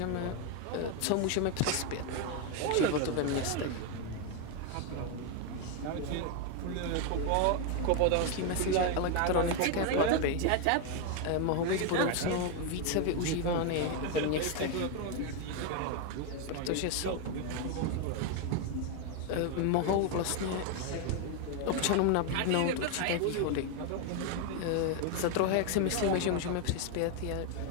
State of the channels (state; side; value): different; both; correlation 0.01